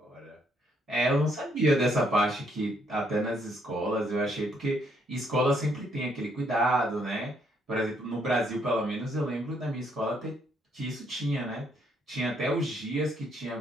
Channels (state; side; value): normal; both; correlation 0.71